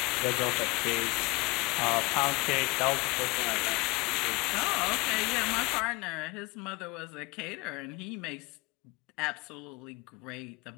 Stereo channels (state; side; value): quieter; right; 24.4 dB